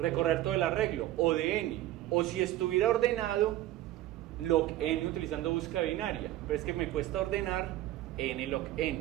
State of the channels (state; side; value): quieter; left; 14.6 dB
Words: todo el arreglo, o de n. O si estuviera ordenado, log n utilizando búsqueda binaria. Pero es que me cuesta ordenar n log